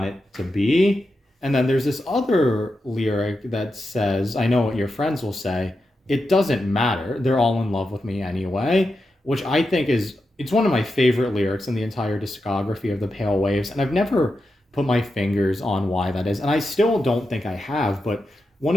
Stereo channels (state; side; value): normal; both; correlation 0.88